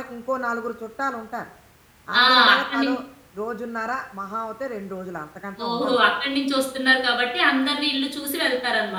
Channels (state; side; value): identical; both; correlation 1.00